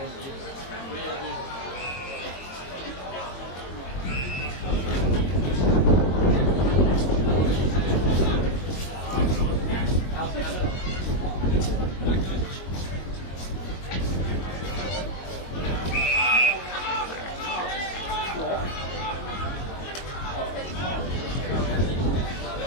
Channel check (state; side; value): late; right; 22 ms